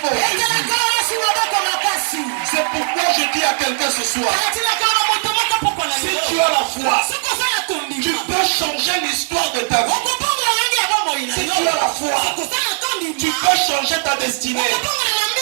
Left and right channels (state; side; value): silent; left; 60 dB below the other